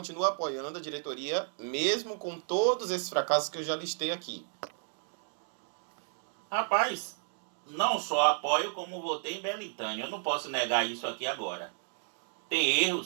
apoiando a diretoria, mesmo com todos esses fracassos que eu já listei aqui. Rapaz, não só apoio como votei em Belintânia, eu não posso negar isso aqui agora. Tem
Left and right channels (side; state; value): left; silent; 56 dB below the other